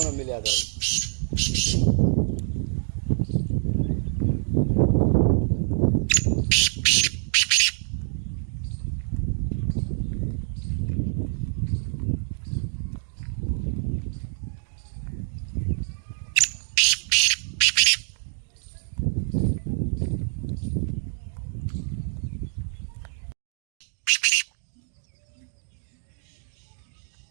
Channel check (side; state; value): left; silent; digital silence